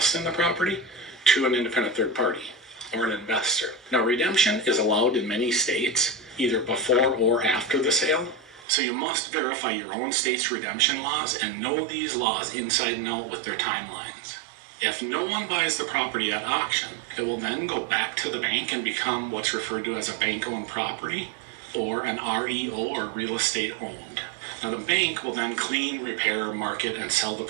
in the property to an independent third party or an investor. Now, redemption is allowed in many states, either before or after the sale. So you must verify your own state's redemption laws and know these laws inside and out with their timelines. If no one buys the property at auction, it will then go back to the bank and become what's referred to as a bank-owned property or an REO, or real estate owned. Now, the bank will then clean, repair, market, and sell the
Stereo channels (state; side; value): drops out; left; at 8.7 s